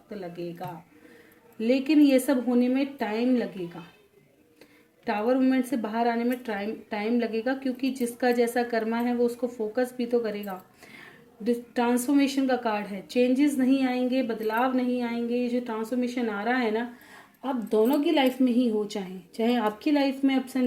लगेगा लेकिन ये सब होने में टाइम लगेगा। टावर मूवमेंट से बाहर आने में टाइम लगेगा क्योंकि जिसका जैसा कर्मा है वो उसको फोकस भी तो करेगा। ट्रांसफॉर्मेशन का कार्ड है, चेंजेस नहीं आएंगे, बदलाव नहीं आएंगे। ये जो ट्रांसफॉर्मेशन आ रहा है ना, आप दोनों की लाइफ में ही हो, चाहे चाहे आपकी लाइफ में अप्स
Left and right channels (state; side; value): identical; both; correlation 1.00